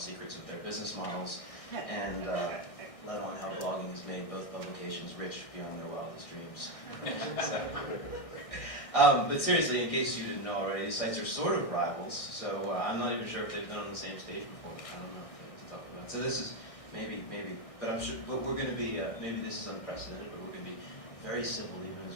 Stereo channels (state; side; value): late; right; 1.6 ms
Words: of their business models and let on how blogging has made both publications rich beyond their wildest dreams. But seriously, in case you didn't know already, these sites are sort of rivals, so I'm not even sure if they've been on the same stage before. I don't know to talk about. So this is maybe, but I'm sure. But we're going to be maybe this is unprecedented, but we're going to be very civil, even